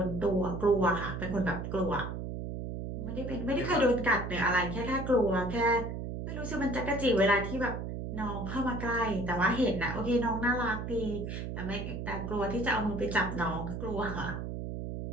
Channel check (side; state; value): right; noise; hum, 5 dB below the sound